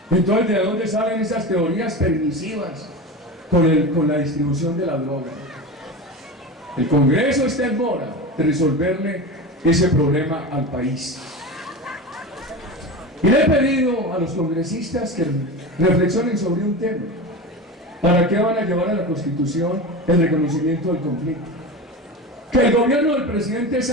Entonces, ¿de dónde salen esas teorías permisivas con la distribución de la droga? El Congreso está en mora de resolverle ese problema al país. Y le he pedido a los congresistas que reflexionen sobre un tema. ¿Para qué van a llevar a la Constitución el reconocimiento del conflicto? Que el gobierno del presidente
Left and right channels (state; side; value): normal; both; correlation 0.27